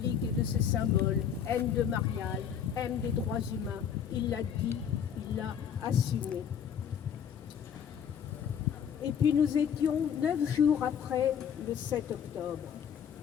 et de ses symboles, haine de Marial, haine des droits humains. Il l'a dit, il l'a assumé. Et puis nous étions 9 jours après le 7 octobre.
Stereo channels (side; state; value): right; quieter; 8.1 dB